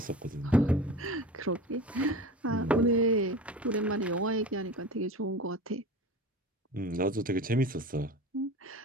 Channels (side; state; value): both; normal; correlation 0.34